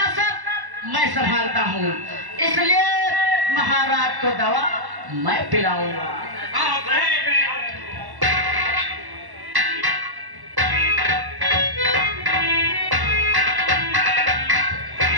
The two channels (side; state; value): left; late; 1.1 ms